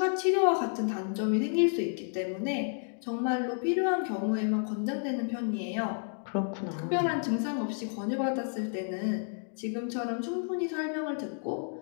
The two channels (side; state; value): right; silent; 57 dB below the other